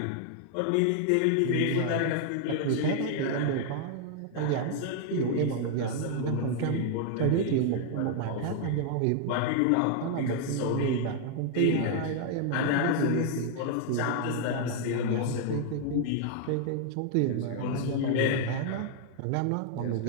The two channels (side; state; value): both; different; correlation 0.00